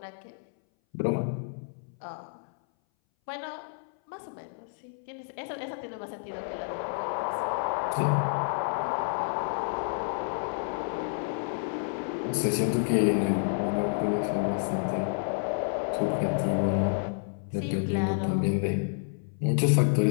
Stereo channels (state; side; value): silent; right; 58 dB below the other